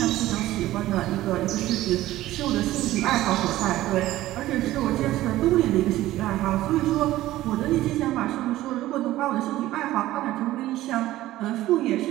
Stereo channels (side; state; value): left; quieter; 15.5 dB